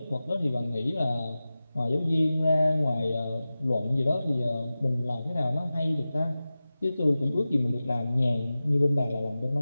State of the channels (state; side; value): inverted; both; correlation -0.96